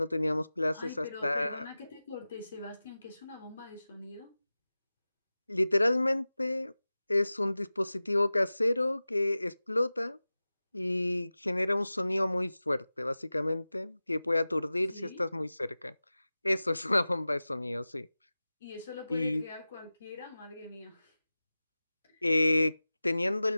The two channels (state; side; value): inverted; both; correlation -0.97